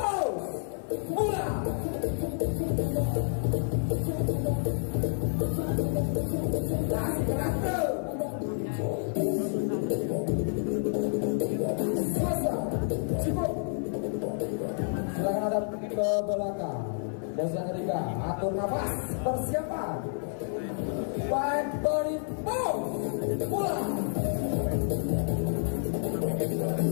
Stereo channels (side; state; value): right; silent; 58 dB below the other